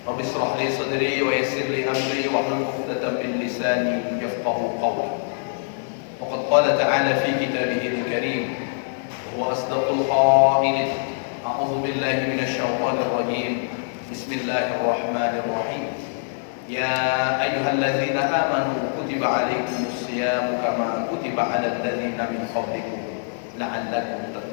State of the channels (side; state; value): right; silent; digital silence